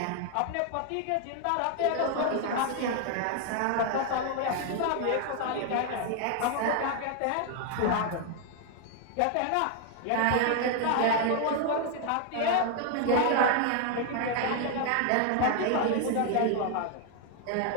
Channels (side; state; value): both; different; correlation 0.00